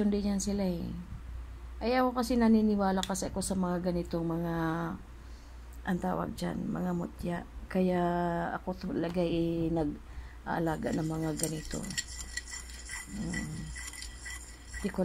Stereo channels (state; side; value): identical; both; correlation 1.00